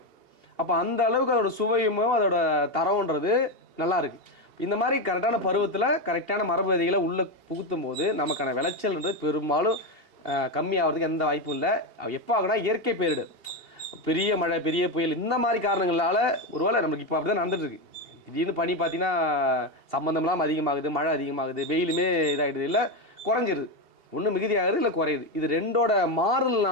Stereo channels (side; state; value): left; late; 2.8 ms